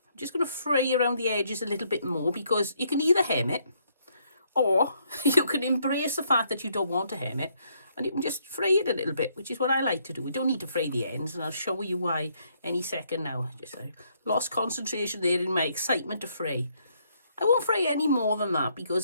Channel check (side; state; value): both; inverted; correlation -0.71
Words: I'm just going to fray around the edges a little bit more because you can either hem it or you can embrace the fact that you don't want to hem it and you can just fray it a little bit, which is what I like to do. We don't need to fray the ends, and I'll show you why any second now. I lost concentration there in my excitement to fray. I won't fray any more than that